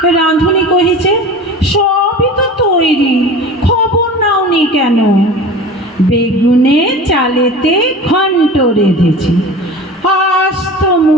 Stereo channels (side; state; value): both; normal; correlation 0.37